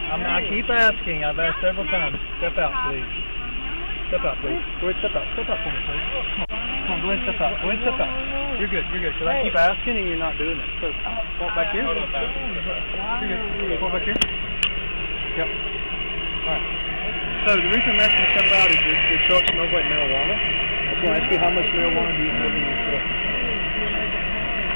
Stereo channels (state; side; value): inverted; both; correlation -1.00